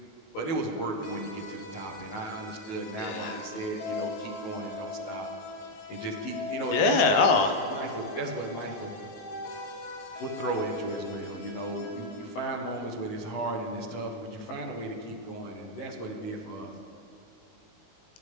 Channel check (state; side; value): late; right; 19 ms